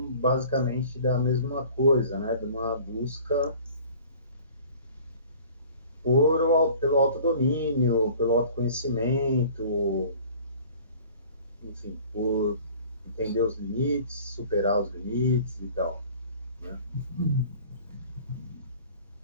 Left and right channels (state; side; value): inverted; both; correlation -0.48